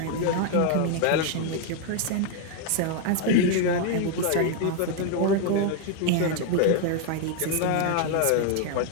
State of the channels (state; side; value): different; both; correlation 0.00